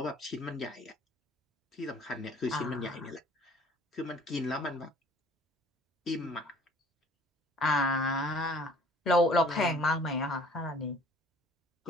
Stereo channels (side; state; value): both; normal; correlation 0.52